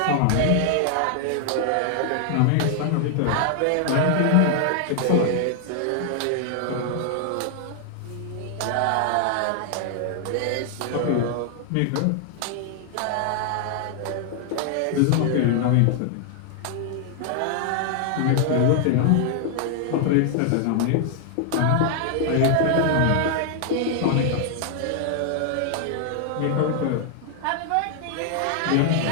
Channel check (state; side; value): different; both; correlation 0.00